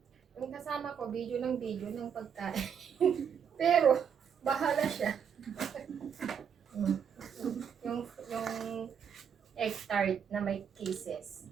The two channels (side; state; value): left; quieter; 7.6 dB